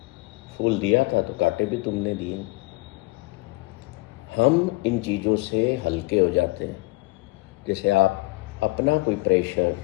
फूल दिया था तो कांटे भी तुमने दिए। हम इन चीज़ों से हल्के हो जाते हैं। जैसे आप अपना कोई प्रेशर,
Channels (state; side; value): quieter; right; 23.0 dB